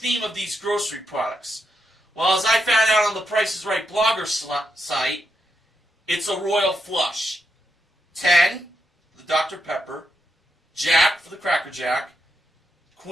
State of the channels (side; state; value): both; normal; correlation 0.83